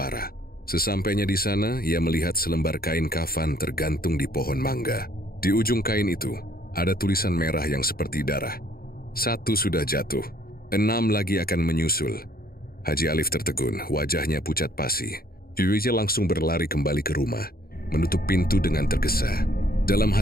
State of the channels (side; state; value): right; late; 0.43 ms